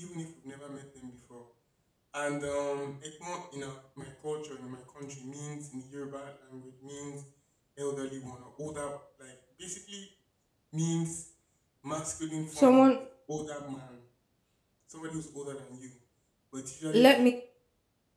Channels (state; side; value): identical; both; correlation 1.00